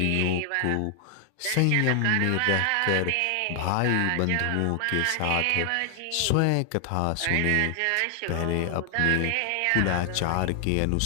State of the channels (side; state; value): both; different; correlation 0.00